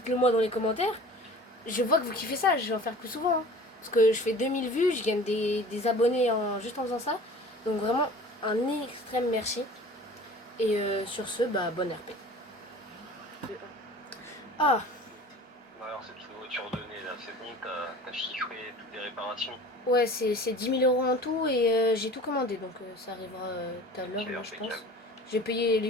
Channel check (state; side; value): normal; both; correlation 0.42